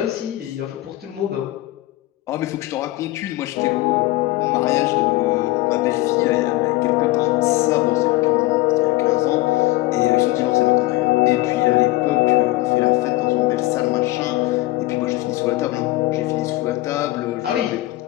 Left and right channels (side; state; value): right; quieter; 18.6 dB